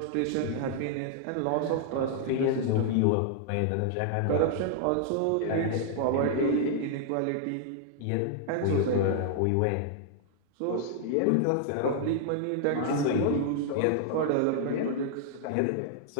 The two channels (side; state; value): both; different; correlation -0.01